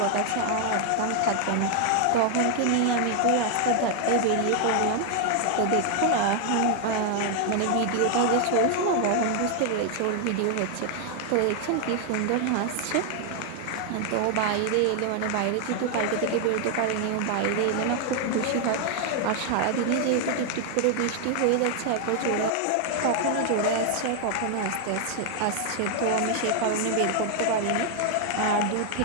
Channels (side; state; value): both; different; correlation 0.00